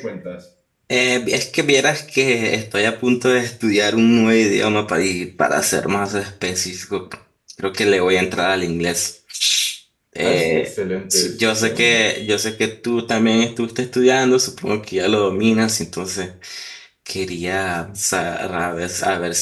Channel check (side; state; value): both; identical; correlation 1.00